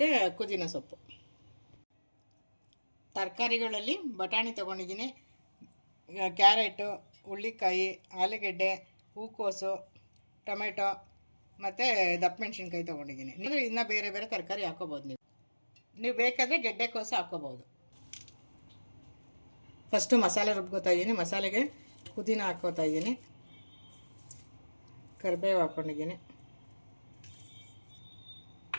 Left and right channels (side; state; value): both; inverted; correlation -1.00